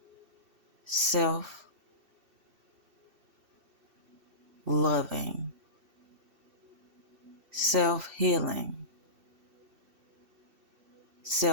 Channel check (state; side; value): late; left; 2.7 ms